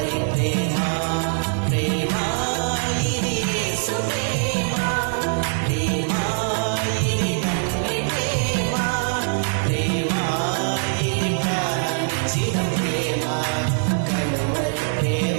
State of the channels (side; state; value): left; silent; 59 dB below the other